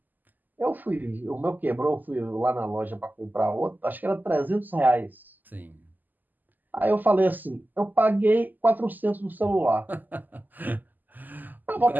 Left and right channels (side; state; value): left; late; 0.086 ms